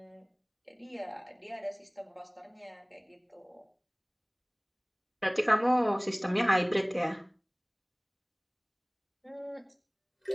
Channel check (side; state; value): both; identical; correlation 1.00